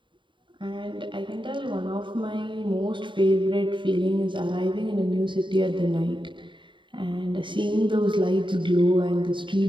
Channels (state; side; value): late; left; 0.23 ms